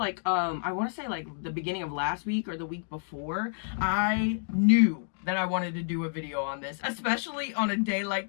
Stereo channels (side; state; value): right; silent; digital silence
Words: I want to say like the beginning of last week or the week before. I knew that I wanted to do a video on this, especially on a day